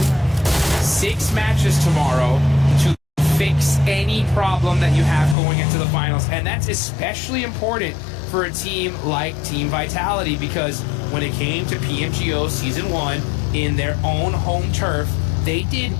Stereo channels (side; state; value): right; drops out; at 5.4 s